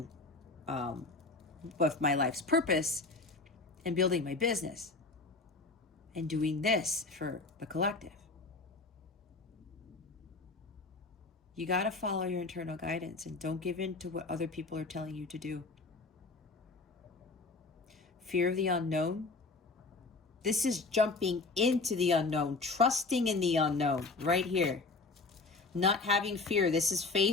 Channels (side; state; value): right; quieter; 3.7 dB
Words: with my life's purpose and building my business and doing this for the collective. You got to follow your internal guidance and don't give in to what other people are telling you to do. Fear of the unknown. This is jumping into the unknown, trusting in the unknown right here. Not having fear. This is